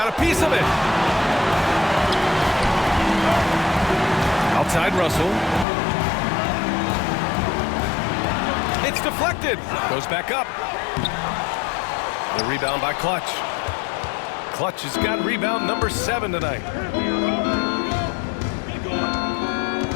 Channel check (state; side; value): drops out; right; at 5.7 s